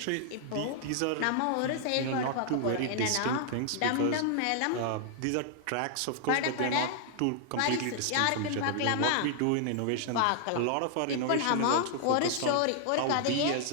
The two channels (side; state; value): both; different; correlation 0.00